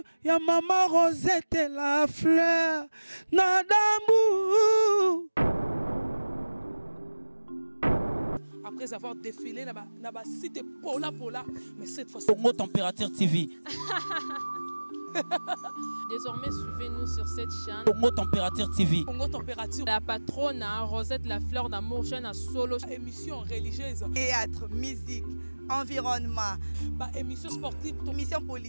ya maman Rosette Lafleur, Nadambu. Après avoir défilé, na site Pola, mais cette fois Congo Température TV. Désormais, suivez-nous sur cette chaîne. Congo Température TV. Congo Température. La patronne, Rosette Lafleur d'amour, chaîne à solo. Émission religieuse. Théâtre, musique, environnement. Émission sportive. Émission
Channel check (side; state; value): both; inverted; correlation -1.00